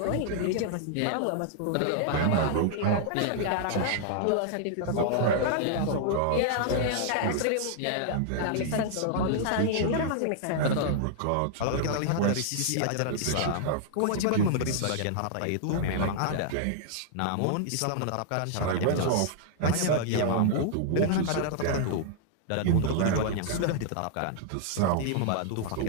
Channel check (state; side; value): different; both; correlation -0.01